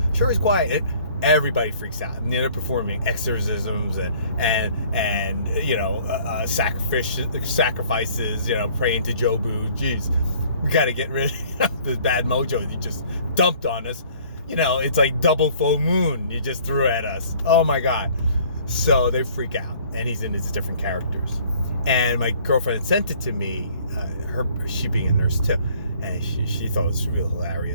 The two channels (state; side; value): inverted; both; correlation -0.55